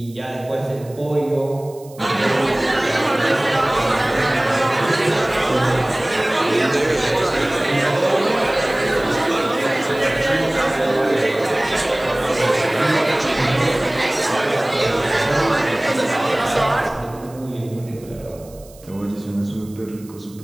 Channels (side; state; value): right; noise; hiss, 24 dB below the sound